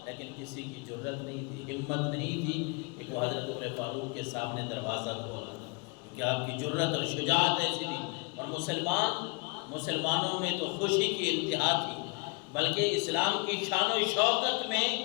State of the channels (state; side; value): quieter; right; 29.2 dB